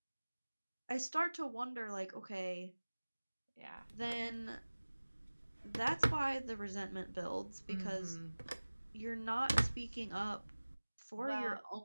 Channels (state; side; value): inverted; both; correlation -1.00